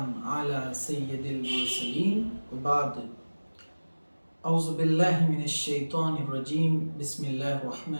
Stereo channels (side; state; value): both; inverted; correlation -1.00